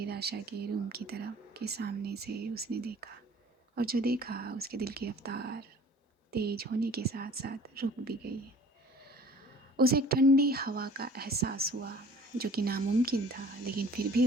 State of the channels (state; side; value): normal; both; correlation 0.49